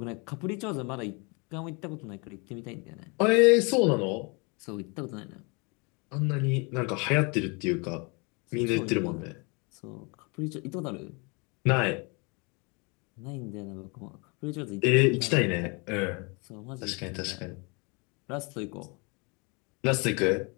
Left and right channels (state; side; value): quieter; right; 30.9 dB